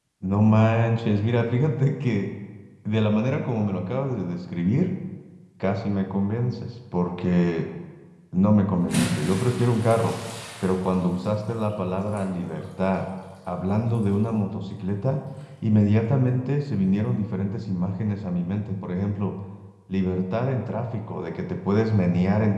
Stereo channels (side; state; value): both; identical; correlation 1.00